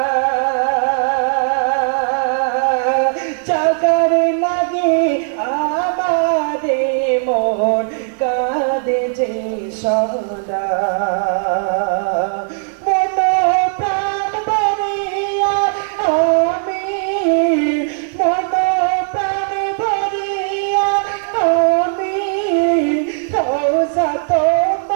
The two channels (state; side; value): silent; left; 57 dB below the other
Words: চাকার লাগে আমারে মন কাঁদে যে সদা।